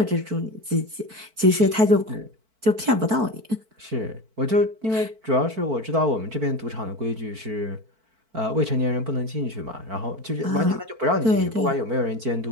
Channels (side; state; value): left; late; 4.5 ms